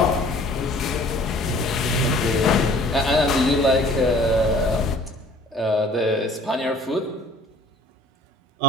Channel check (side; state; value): both; normal; correlation 0.52